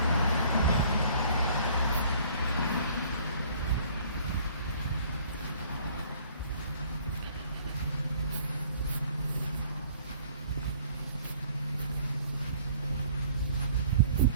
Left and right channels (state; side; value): inverted; both; correlation -0.55